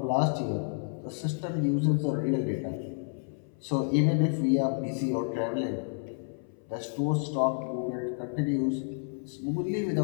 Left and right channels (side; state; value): right; silent; 58 dB below the other